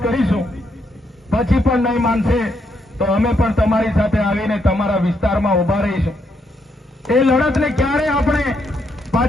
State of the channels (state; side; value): normal; both; correlation 0.77